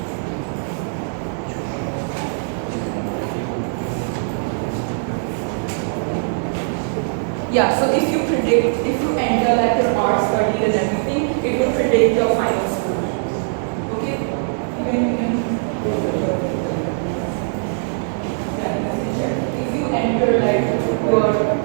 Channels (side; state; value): left; silent; digital silence